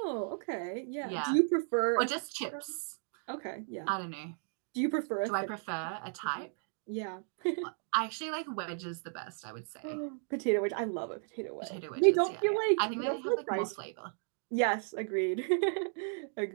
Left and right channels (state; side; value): silent; left; 55 dB below the other